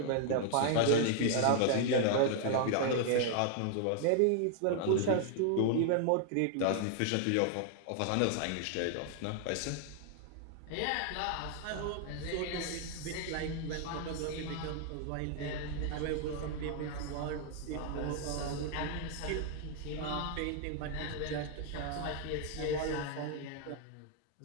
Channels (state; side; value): different; both; correlation 0.00